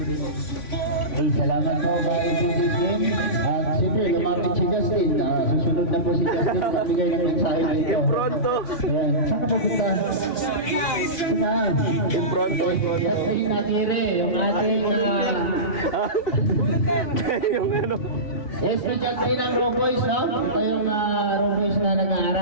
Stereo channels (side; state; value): right; late; 3.5 ms